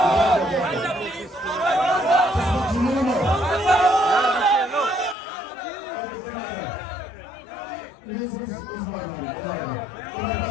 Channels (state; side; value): drops out; right; at 5.2 s